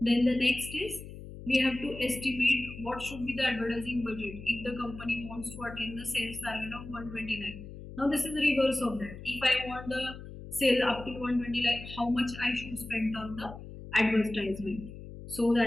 Then the next is we have to estimate what should be the advertising budget if the company wants to attain the sales target of 120 lakh. Now this is the reverse of that. If I want the sale up to 120 lakh, how much I should spend on the advertisement? So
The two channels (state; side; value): noise; left; hum, 13 dB below the sound